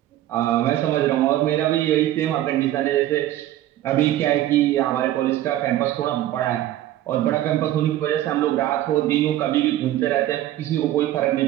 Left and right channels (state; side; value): quieter; left; 13.7 dB